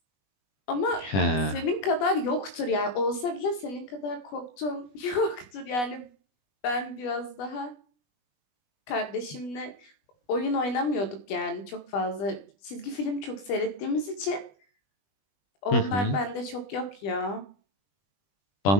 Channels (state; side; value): late; right; 20 ms